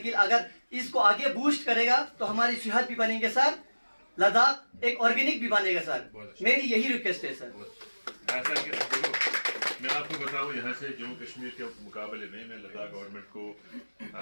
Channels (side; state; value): both; inverted; correlation -1.00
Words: अगर इसको आगे बूस्ट करेगा तो हमारी सेहत भी बनेंगे सर, लद्दाख एक ऑर्गेनिक भी बनेगा सर। मेरी यही रिक्वेस्ट है सर। ऐसा कि देखो, मैं आपको बताऊं, यहाँ से जम्मू कश्मीर के मुकाबले में मैं लद्दाख गवर्नमेंट को